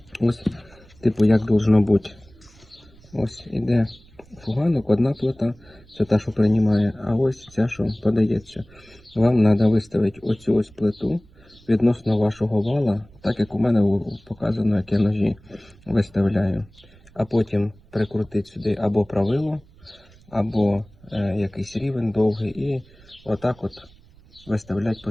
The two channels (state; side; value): noise; right; rumble, 26 dB below the sound